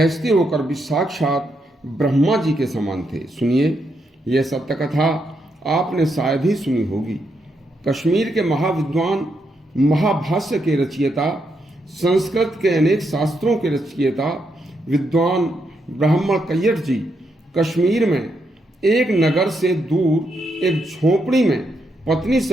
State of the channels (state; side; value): normal; both; correlation 0.80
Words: होकर भी साक्षात ब्रह्मा जी के समान थे। सुनिए, यह सत्य कथा आपने शायद ही सुनी होगी। कश्मीर के महाविद्वान, महाभाष्य के रचयिता, संस्कृत के अनेक शास्त्रों के रचयिता विद्वान ब्राह्मण कैयट जी कश्मीर में एक नगर से दूर एक झोपड़ी में पत्नी